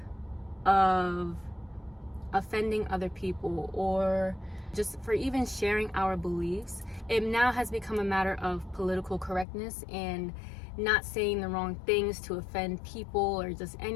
of offending other people, or just for even sharing our beliefs. It now has become a matter of political correctness and not saying the wrong things to offend people or just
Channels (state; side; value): drops out; right; at 9.5 s